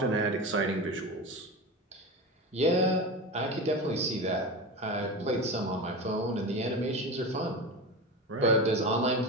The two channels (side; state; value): both; normal; correlation 0.25